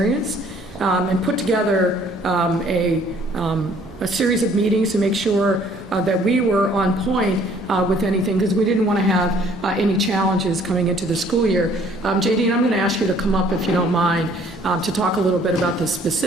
and put together a series of meetings to make sure that we were on point with anything, because we didn't want to have any challenges coming into the school year. JD, I'm going to ask you to come up, if you don't mind, to talk a little bit about the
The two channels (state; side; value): normal; both; correlation 0.59